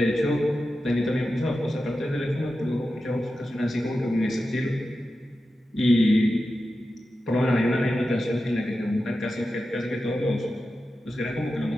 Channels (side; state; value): both; normal; correlation 0.91